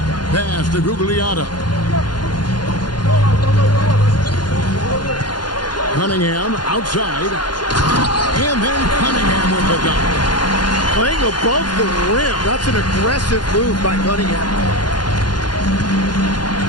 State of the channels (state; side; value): late; right; 0.71 ms